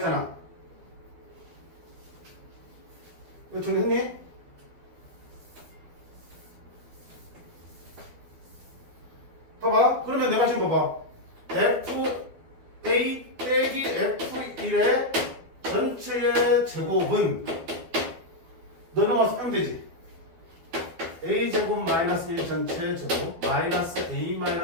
이거 정리했니? 봐봐. 그러면 내가 지금 봐봐. FA 빼기 F1의 전체의 제곱은 너 넘어서 하면 되지. A제곱 마이너스 1 전체 제곱 마이너스 A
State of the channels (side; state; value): left; late; 11 ms